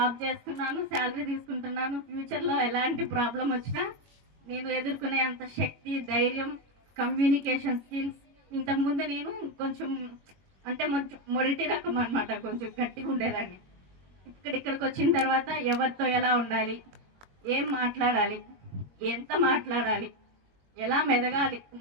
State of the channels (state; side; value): late; left; 22 ms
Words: చేస్తున్నాను, శాలరీ తీసుకుంటున్నాను. ఫ్యూచర్లో ఎలాంటి ప్రాబ్లం వచ్చినా నేను ఎదుర్కొనే అంత శక్తి, ధైర్యం, కమ్యూనికేషన్ స్కిల్స్. ఇంతకుముందు నేను కొంచెం అంటే మొదటి రకం అనమాట, కొంచెం గట్టిగా ఉండేదాన్ని. ఇక్కడికి వచ్చిన తర్వాత ఎవరితో ఎలా ఉండాలి, ఏం మాట్లాడాలి, ఎంత మాట్లాడాలి, ఎలా మెదగాలి,